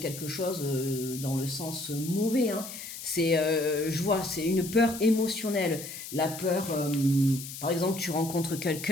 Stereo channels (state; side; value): noise; left; hiss, 10 dB below the sound